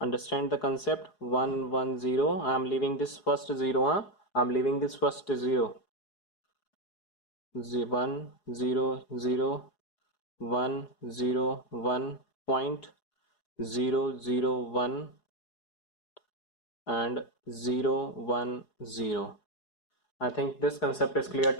the concept. 1, 1, 0. I am leaving this first 0. I am leaving this first 0. 1, 0, 0, 1, 0, 1, point 0, 0, 1 and 0, 1, 0. I think this concept is clear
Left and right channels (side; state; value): right; late; 4.8 ms